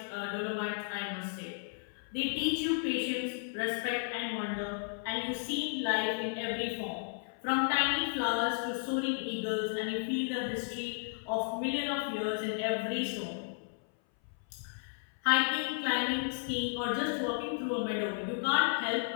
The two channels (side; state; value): right; silent; 55 dB below the other